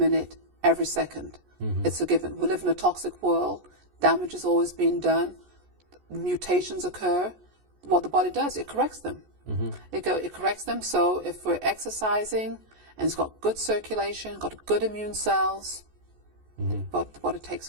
every second. It's a given. We live in a toxic world. Damage is always being done. Mutations occur. What the body does, it corrects them. It corrects them. So if we're exercising and it's got good circulation, got good immune cells, but the body takes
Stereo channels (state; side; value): late; left; 14 ms